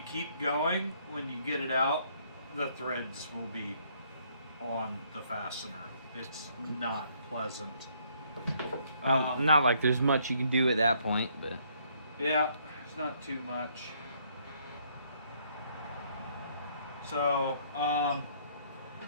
going, when you get it out, the threads will be on the fastener. It's not pleasant. Not like there's much you can do at that point, but yeah, it's not too much. So,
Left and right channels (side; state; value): both; inverted; correlation -0.67